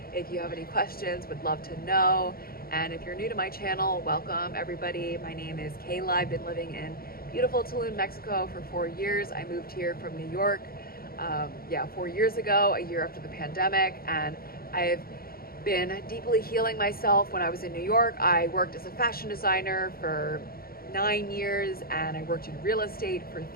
If you have any questions, would love to know. And if you're new to my channel, welcome everybody. My name is Kayla. I've been living in beautiful Tulum, Mexico for 4 years. I moved here from New York, 4 years ago, a year after the pandemic. And I've been deeply healing myself. When I was in New York, I worked as a fashion designer for 9 years, and I worked in real estate for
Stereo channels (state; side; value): late; right; 0.43 ms